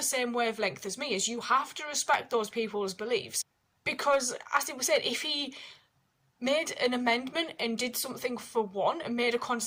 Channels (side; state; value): both; identical; correlation 1.00